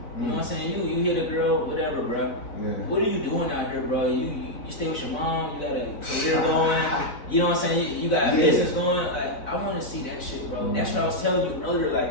You know what I'm saying? You hit a girl, whatever, bro. Yeah. What are you doing out here, bro? You stay with your mom, you got a career going, you know what I'm saying? You got a business going. Like, I want to see that shit, bro. That's what I was telling you earlier.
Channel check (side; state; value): right; late; 4.0 ms